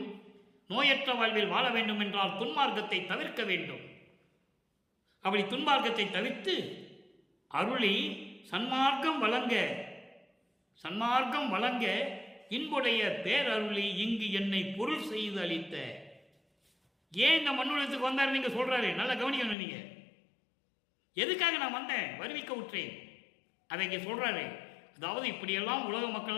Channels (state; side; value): drops out; right; at 19.6 s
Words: நோயற்ற வாழ்வில் வாழ வேண்டும் என்றால் துன்மார்க்கத்தை தவிர்க்க வேண்டும். அப்படி துன்மார்க்கத்தை தவிர்த்து அருளி சன்மார்க்கம் வழங்க இன்புடைய பேரருளி இங்கு என்னை பொருள் செய்து அளித்த. ஏன் இந்த மண்ணுலகத்துக்கு வந்தார் நீங்க சொல்றாரு, நல்லா கவனிக்கணும். நீங்க எதுக்காக நான் வந்தேன், வருவிக்க விட்டேன், அதை இங்கே சொல்றாரு. அதாவது இப்படியெல்லாம் உலக மக்கள்